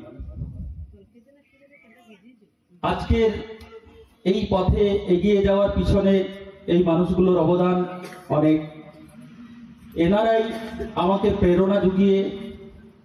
আজকের এই পথে এগিয়ে যাওয়ার পিছনে এই মানুষগুলোর অবদান অনেক। এনারাই আমাকে প্রেরণা জুগিয়ে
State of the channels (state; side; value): identical; both; correlation 1.00